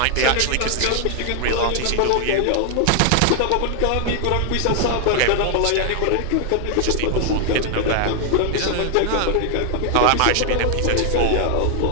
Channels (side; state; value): both; different; correlation 0.00